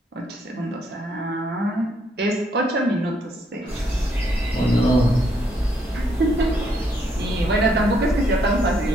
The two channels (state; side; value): normal; both; correlation 0.72